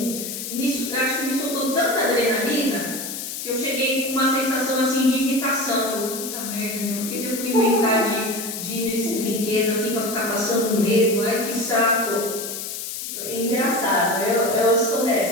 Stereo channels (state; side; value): noise; left; hiss, 6 dB below the sound